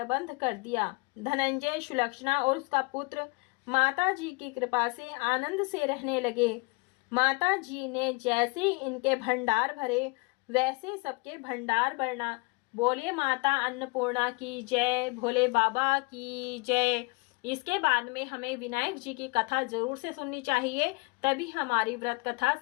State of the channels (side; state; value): right; quieter; 28.2 dB